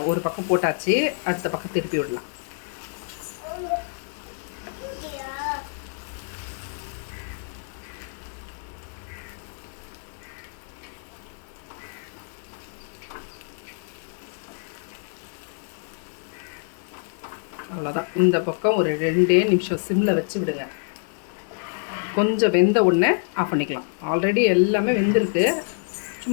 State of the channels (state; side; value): silent; right; 61 dB below the other